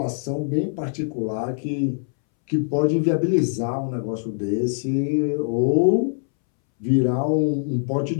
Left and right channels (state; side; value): silent; right; 63 dB below the other